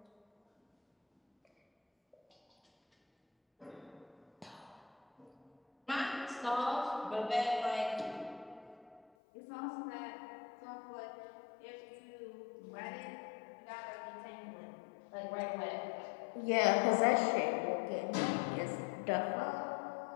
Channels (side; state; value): right; drops out; at 9.1 s